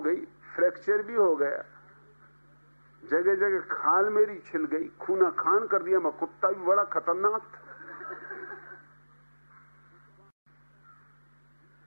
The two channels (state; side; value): inverted; both; correlation -1.00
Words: गई, फ्रैक्चर भी हो गया, जगह जगह खाल मेरी छिल गई, खूना खान कर दिया, मैं कुत्ता भी बड़ा खतरनाक था।